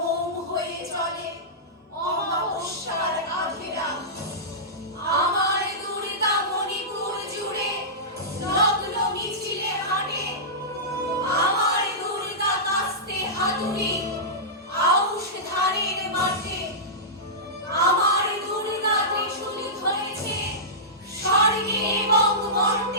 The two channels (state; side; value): normal; both; correlation -0.16